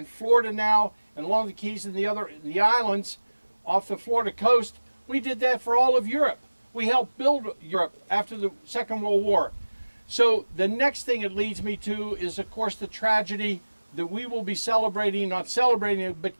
Florida now and along the Keys and the islands off the Florida coast, we did that for all of Europe. We helped build Europe after the Second World War. So the next thing it leads me to is, of course, the tragedy that we will be celebrating, not celebrating it, but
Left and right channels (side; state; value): both; inverted; correlation -1.00